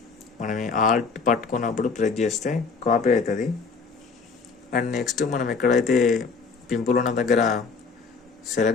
మనం ఆల్ట్ పట్టుకున్నప్పుడు ప్రెస్ చేస్తే కాపీ అవుతుంది. అండ్ నెక్స్ట్ మనం ఎక్కడైతే పింపుల్ ఉన్న దగ్గర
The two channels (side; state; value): right; quieter; 4.9 dB